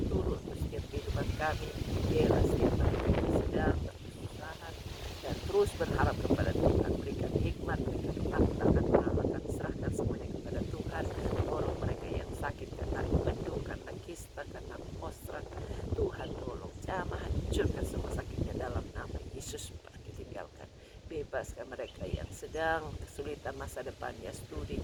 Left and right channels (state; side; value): identical; both; correlation 1.00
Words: turun untuk setiap kehidupan kami, biarlah setiap kami sedang berkesusahan dan terus berharap kepada Tuhan. Berikan hikmat, berikan ketakutan Allah. Kami serahkan semuanya kepada Tuhan. Tolong mereka yang sakit karena mendung, karena kista, karena postrat. Tuhan tolong jamah, hancurkan semua sakitnya dalam nama Yesus, pergi tinggalkan. Bebaskan mereka yang sedang kesulitan masa depannya,